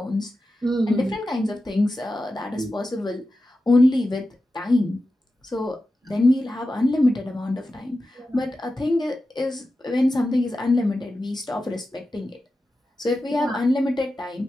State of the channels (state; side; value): normal; both; correlation 0.92